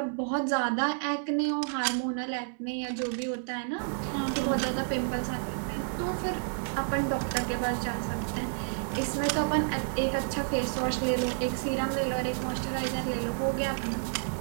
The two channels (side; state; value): left; silent; 58 dB below the other